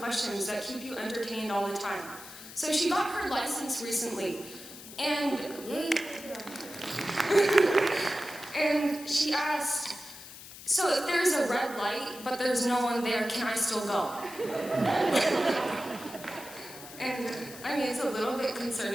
that keep you entertained all the time. So she got her license recently, and and she asked, "So if there's a red light, but there's no one there, can I still go?" And I mean, it's a little bit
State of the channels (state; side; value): noise; left; hiss, 15 dB below the sound